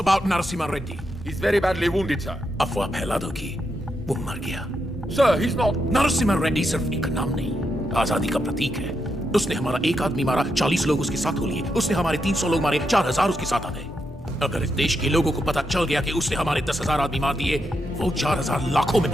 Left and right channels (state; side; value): normal; both; correlation 0.83